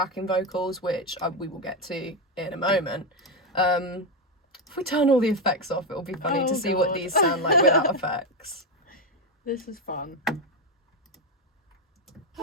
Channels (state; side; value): normal; both; correlation 0.08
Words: vocals, which we will get to in a moment. If we turn all the effects off, it'll be funny to see what these sound like without effects. This is fun.